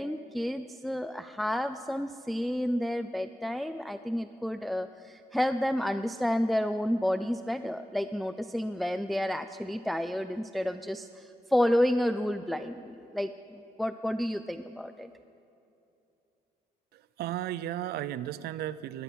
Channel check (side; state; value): both; normal; correlation 0.92